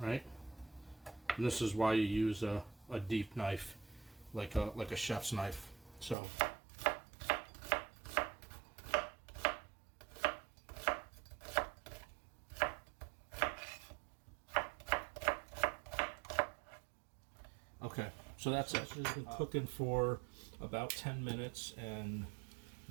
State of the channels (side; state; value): left; drops out; at 6.2 s